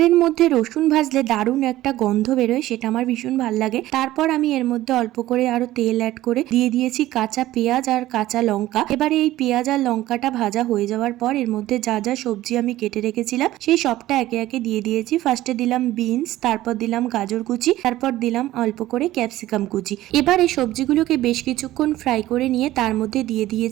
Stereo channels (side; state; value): left; quieter; 15.5 dB